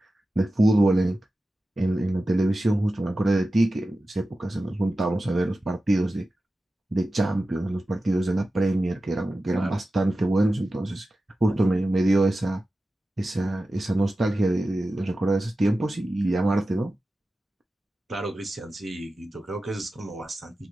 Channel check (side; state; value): both; normal; correlation 0.94